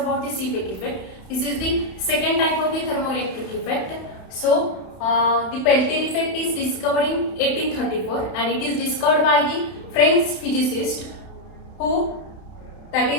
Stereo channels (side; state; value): right; late; 31 ms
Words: the Seebeck effect. This is the second type of the thermoelectric effect. So the Peltier effect is discovered in 1834 and it is discovered by the French physicist who, that